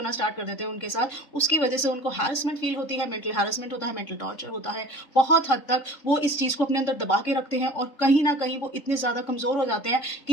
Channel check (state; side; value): late; right; 3.6 ms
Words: स्टार्ट कर देते हैं उनके साथ, उसकी वजह से उनको हैरेसमेंट फील होती है, मेंटल हैरेसमेंट होता है, मेंटल टॉर्चर होता है। बहुत हद तक वो इस चीज को अपने अंदर दबा के रखते हैं और कहीं ना कहीं वो इतने ज्यादा कमजोर हो जाते हैं